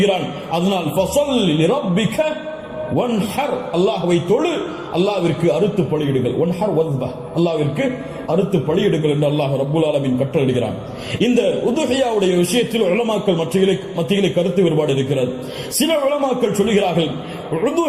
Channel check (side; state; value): both; identical; correlation 1.00